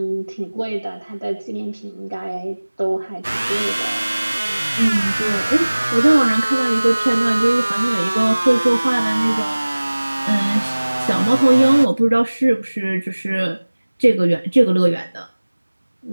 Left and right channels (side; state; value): both; inverted; correlation -1.00